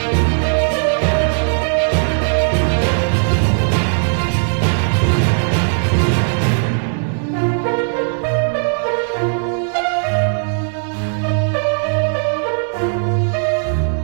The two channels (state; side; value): silent; left; digital silence